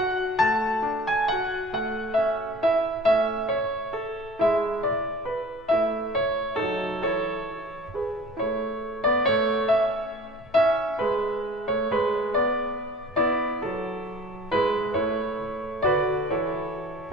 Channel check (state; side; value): normal; both; correlation 0.45